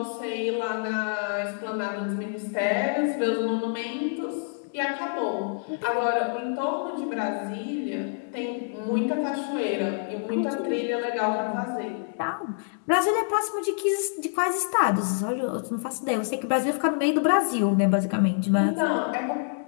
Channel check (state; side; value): silent; right; 60 dB below the other